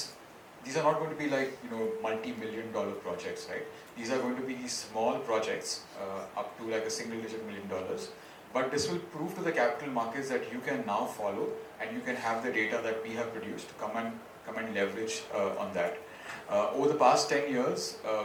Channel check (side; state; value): both; identical; correlation 1.00